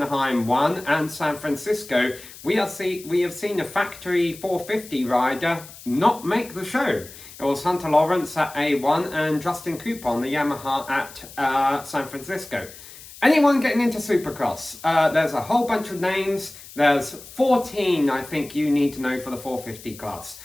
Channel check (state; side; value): noise; left; hiss, 17 dB below the sound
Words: 1 and San Francisco, we have seen a factory 450 rider not make the show. It was Hunter Lawrence at A1 and Justin Cooper on the Yamaha at San Francisco. Anyone getting into Supercross? There's a whole bunch of names. There's 14, I think, you need to know for the 450 class.